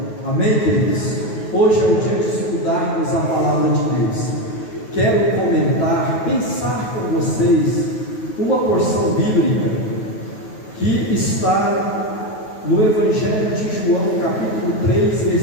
Amém, queridos? Hoje é o dia de estudarmos a palavra de Deus. Quero comentar, pensar com vocês uma porção bíblica que está no Evangelho de João, capítulo 3,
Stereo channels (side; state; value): right; late; 9.3 ms